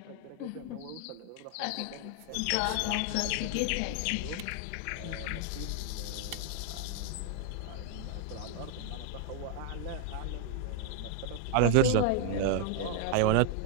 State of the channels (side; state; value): both; different; correlation 0.00